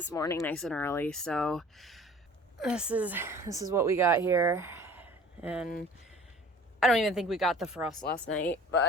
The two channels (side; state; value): both; normal; correlation 0.45